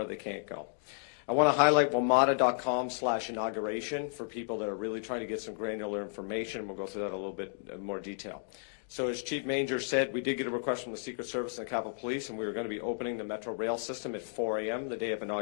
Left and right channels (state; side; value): silent; right; digital silence